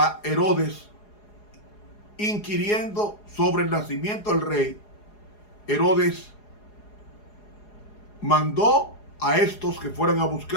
Herodes inquiriendo sobre el nacimiento del rey, Herodes mandó a estos que fueran a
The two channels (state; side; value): late; right; 4.8 ms